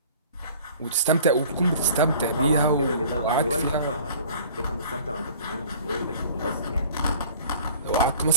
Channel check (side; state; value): both; inverted; correlation -0.48